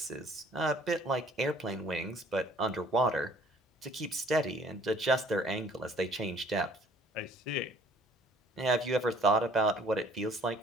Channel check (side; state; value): both; normal; correlation 0.57